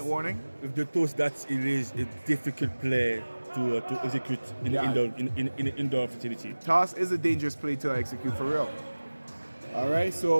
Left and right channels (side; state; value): both; inverted; correlation -1.00